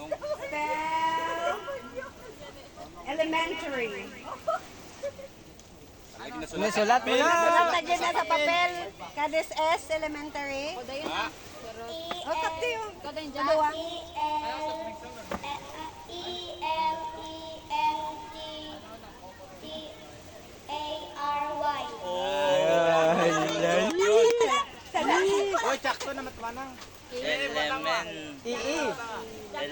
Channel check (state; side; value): identical; both; correlation 1.00